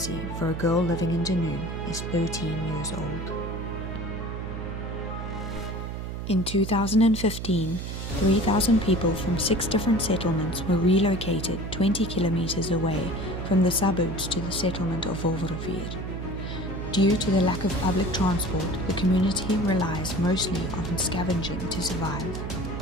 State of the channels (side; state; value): right; noise; hum, 6 dB below the sound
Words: for a girl living in Dunoon is 13 years old. In 2015, 3,000 people from 6 different settlements were relocated 20 kilometers away from the suburbs to the settlement of Wolverrivier. Due to the lack of public transport, the community relies mostly on scavenging to survive.